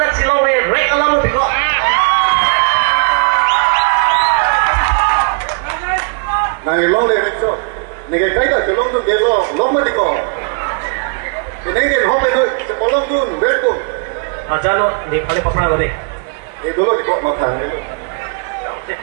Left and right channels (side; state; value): left; quieter; 38.7 dB